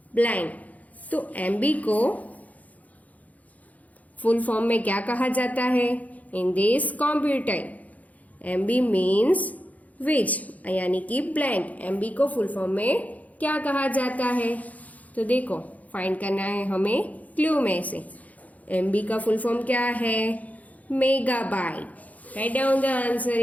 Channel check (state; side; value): late; right; 0.074 ms